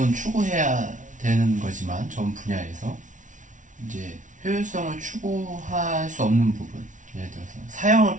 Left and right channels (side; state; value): left; late; 0.37 ms